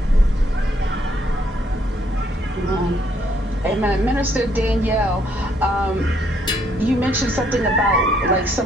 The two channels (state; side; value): normal; both; correlation 0.69